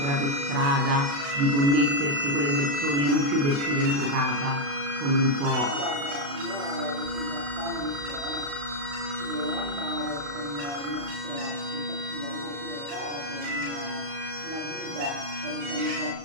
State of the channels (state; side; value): late; left; 35 ms